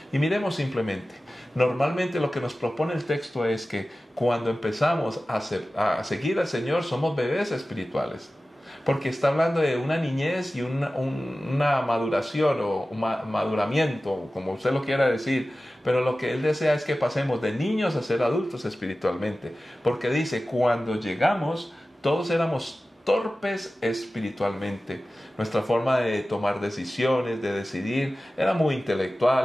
Y miremos simplemente, normalmente lo que nos propone el texto es que cuando empezamos a seguir al Señor somos bebés espirituales. Porque está hablando de una niñez y una maduración o maduramiento, como usted lo quiera decir. Pero lo que Él desea es que pasemos de niños a ser adultos espiritualmente. Porque dice, cuando llegamos, todos éramos torpes espiritualmente. Nuestra forma de tomar decisiones, de decidir, era muy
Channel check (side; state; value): both; normal; correlation 0.96